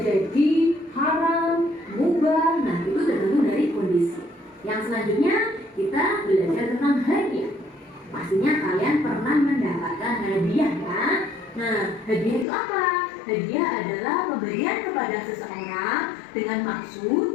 haram, mubah. Nah, itu tergantung dari kondisi. Yang selanjutnya kita belajar tentang hadiah. Pastinya kalian pernah mendapatkan hadiah ya. Nah, hadiah itu apa? Hadiah adalah pemberian kepada seseorang dengan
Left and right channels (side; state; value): right; drops out; at 12.5 s